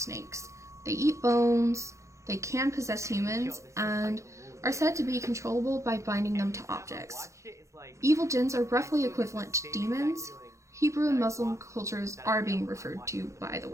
They eat bones, they can possess humans, and are said to be controllable by binding them to objects. Evil jinns are roughly equivalent to demons. Hebrew and Muslim cultures are being referred to, by the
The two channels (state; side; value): late; left; 0.15 ms